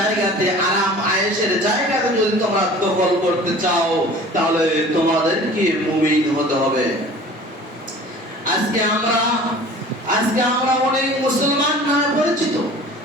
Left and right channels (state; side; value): normal; both; correlation 0.44